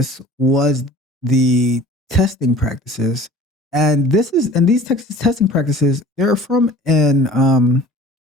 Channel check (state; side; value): normal; both; correlation 0.46